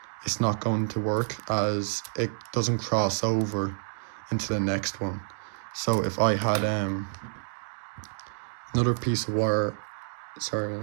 it's not going to work as it doesn't cross over into the next one. So if I had another piece of wire, if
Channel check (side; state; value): left; silent; digital silence